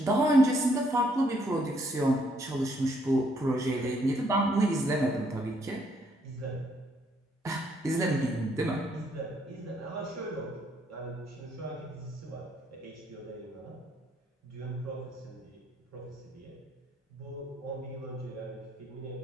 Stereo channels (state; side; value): normal; both; correlation 0.70